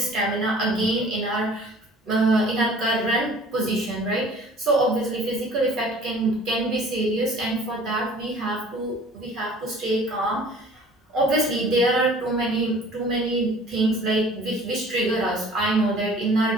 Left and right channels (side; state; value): both; normal; correlation 0.49